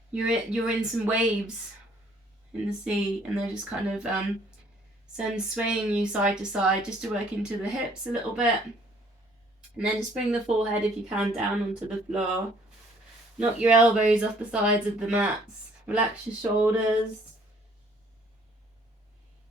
some waves in the sea, and they're just kind of swaying you side to side, just to work into the hips a little bit. And then just bring the forehead, if you can, down onto the floor. Knock your elbows off the sides of the mats. Relax your shoulders.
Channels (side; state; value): both; normal; correlation 0.61